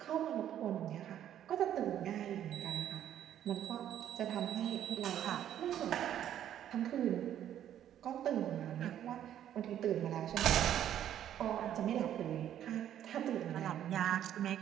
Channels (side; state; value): left; quieter; 10.8 dB